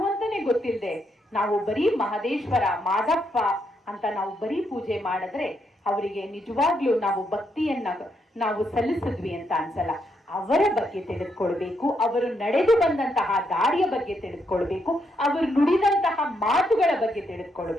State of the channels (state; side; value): normal; both; correlation 0.78